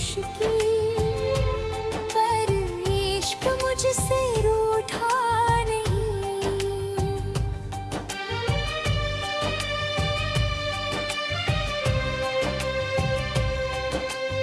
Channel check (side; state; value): both; identical; correlation 1.00